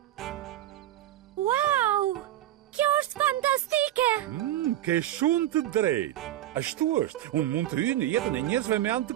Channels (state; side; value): quieter; left; 13.3 dB